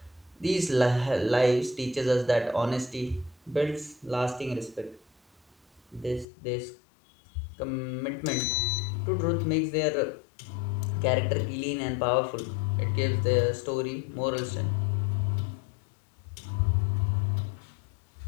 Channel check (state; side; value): drops out; right; at 6.2 s